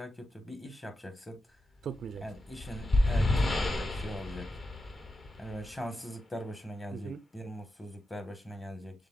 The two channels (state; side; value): normal; both; correlation 0.90